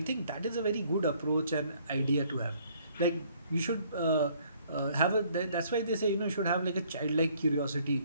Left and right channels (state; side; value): inverted; both; correlation -0.62